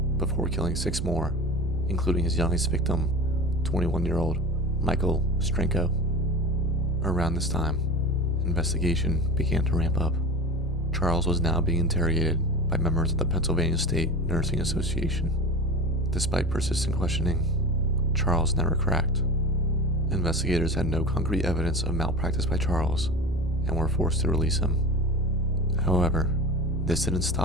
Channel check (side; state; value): both; normal; correlation 0.30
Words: before killing 6 more, including his youngest victim, 21-year-old Michael Strenko. Around this time, investigation began to ramp up. Charles was now being interrogated by members of the Pennsylvania State Nursing Association. Despite persistent questioning, Charles never cracked. Investigators had no concrete evidence of malpractice by Charles and were forced to release him. However, this didn't